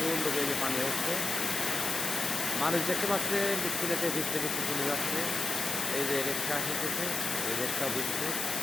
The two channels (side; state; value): left; noise; hiss, 3 dB below the sound